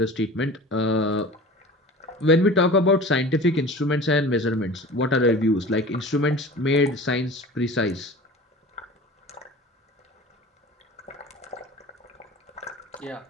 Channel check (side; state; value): both; normal; correlation 0.38